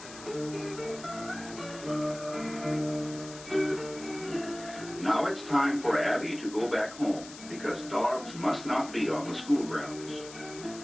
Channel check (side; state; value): left; noise; hiss, 15 dB below the sound